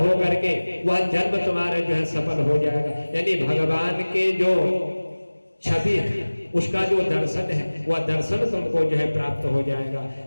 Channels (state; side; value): inverted; both; correlation -1.00